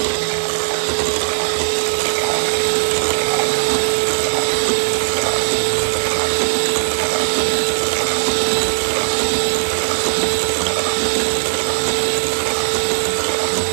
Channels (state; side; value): silent; left; digital silence